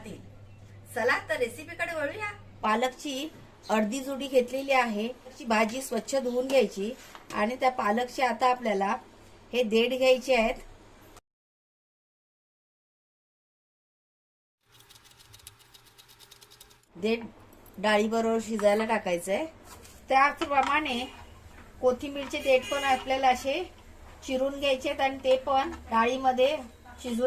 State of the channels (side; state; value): both; identical; correlation 1.00